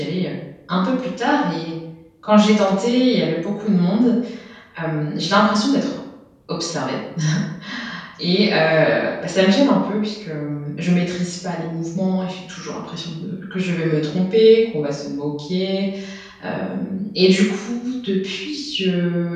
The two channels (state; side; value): identical; both; correlation 1.00